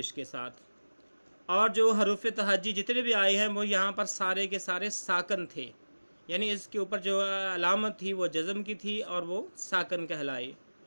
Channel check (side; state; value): both; inverted; correlation -1.00